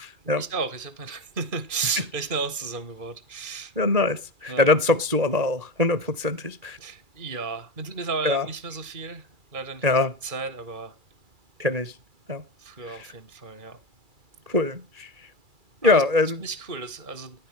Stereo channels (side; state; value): left; late; 2.3 ms